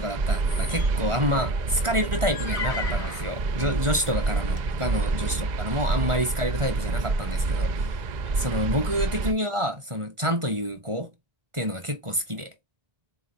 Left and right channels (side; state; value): left; late; 1.4 ms